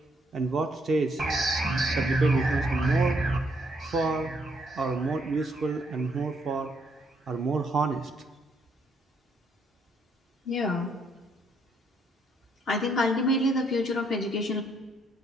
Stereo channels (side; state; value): both; normal; correlation 0.71